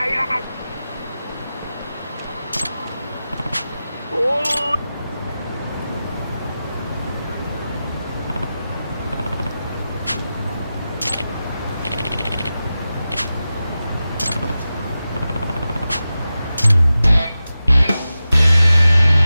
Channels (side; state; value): both; inverted; correlation -0.93